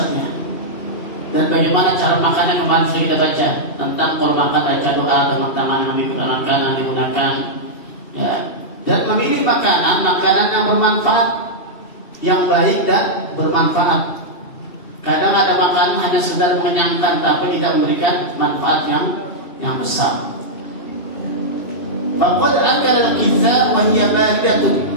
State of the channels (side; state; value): right; late; 3.2 ms